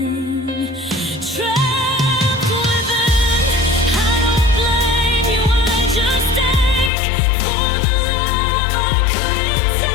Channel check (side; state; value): right; drops out; at 6.9 s